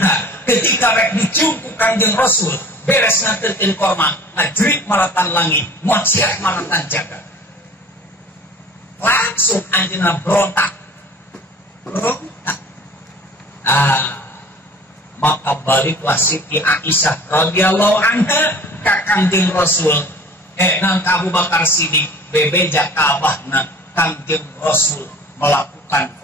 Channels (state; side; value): normal; both; correlation 0.45